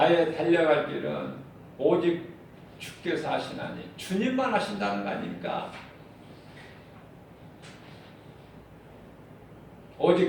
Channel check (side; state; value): both; identical; correlation 1.00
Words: 달려갈 길은 오직 주께서 하시나니, 주님만 하신다는 거 아닙니까? 오직